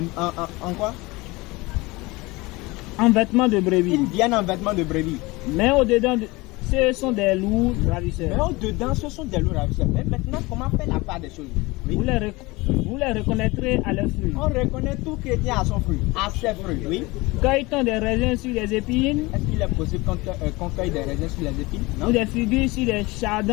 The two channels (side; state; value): right; quieter; 22.7 dB